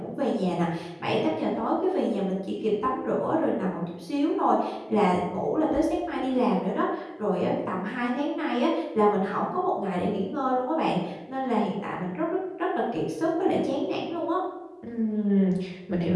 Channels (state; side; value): identical; both; correlation 1.00